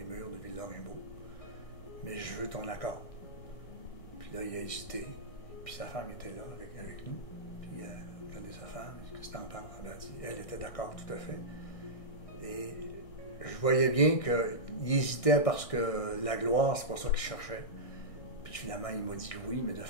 murs de Ville-Lorrainbeau, mais je veux ton accord. Puis là, il a hésité, puis sa femme était là avec nous, puis regardez sa femme, il dit, qu'est-ce que t'en penses? Elle a dit, elle était d'accord tout à fait. Et je voyais bien qu'il hésitait parce que la gloire, c'est pas ça qu'il cherchait. Puis finalement, il m'a dit oui, mais de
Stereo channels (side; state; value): right; late; 1.6 ms